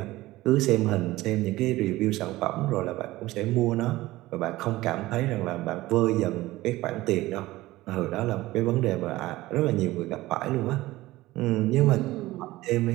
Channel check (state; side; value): quieter; left; 17.8 dB